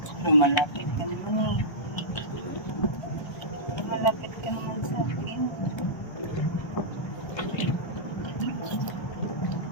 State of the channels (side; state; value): right; late; 1.3 ms